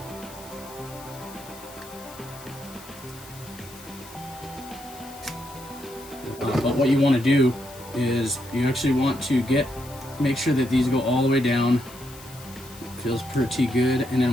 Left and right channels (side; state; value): left; noise; hiss, 18 dB below the sound